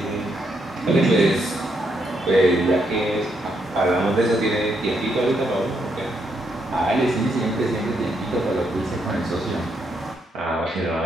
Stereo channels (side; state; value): both; normal; correlation 0.77